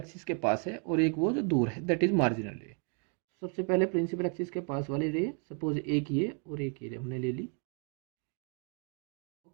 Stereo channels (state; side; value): quieter; left; 38.6 dB